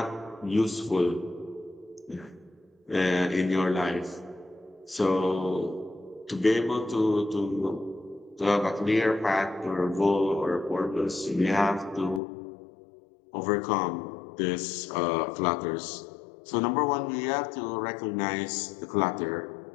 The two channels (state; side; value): drops out; right; at 12.2 s